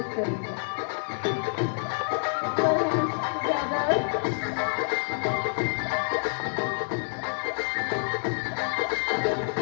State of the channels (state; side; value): silent; right; 60 dB below the other